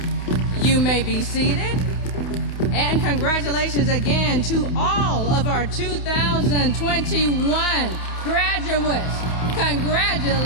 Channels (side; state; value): right; late; 28 ms